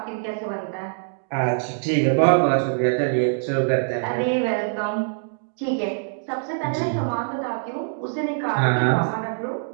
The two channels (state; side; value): silent; left; digital silence